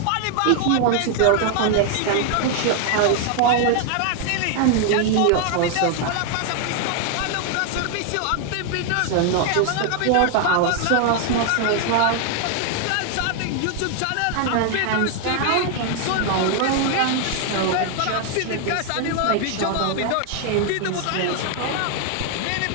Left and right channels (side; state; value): both; different; correlation 0.00